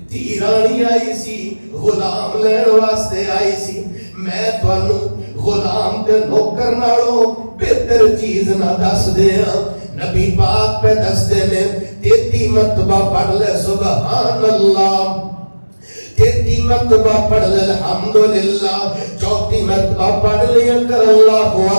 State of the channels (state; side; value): inverted; both; correlation -1.00